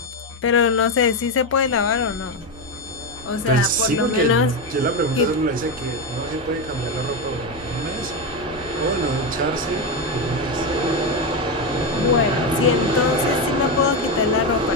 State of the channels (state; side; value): normal; both; correlation 0.11